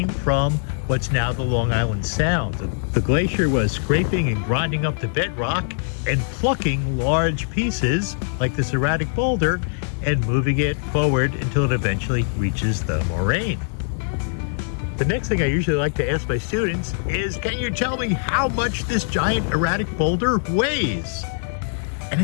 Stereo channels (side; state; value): right; silent; 64 dB below the other